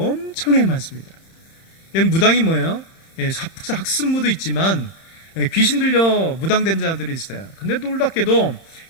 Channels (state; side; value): late; right; 31 ms